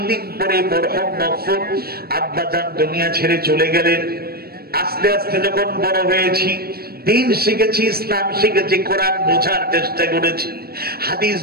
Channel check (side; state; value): left; late; 0.45 ms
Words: দিন পরে মরহুম মকফুর আব্বাজান দুনিয়া ছেড়ে চলে গেলেন। আস্তে আস্তে যখন বড় হয়েছি, দিন শিখেছি, ইসলাম শিখেছি, কোরআন বোঝার চেষ্টা করেছি, হাদিস